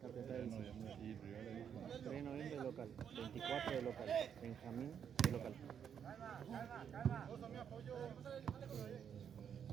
Capital del 3 de noviembre de local, 24 de local, Benjamín de local.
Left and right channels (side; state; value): left; quieter; 8.1 dB